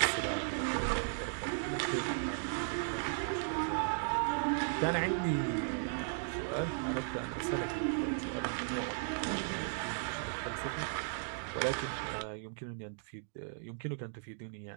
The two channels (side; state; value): left; silent; digital silence